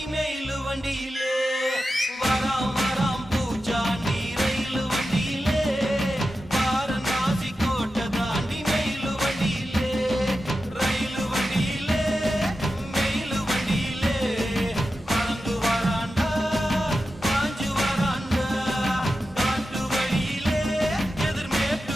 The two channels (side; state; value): both; normal; correlation 0.92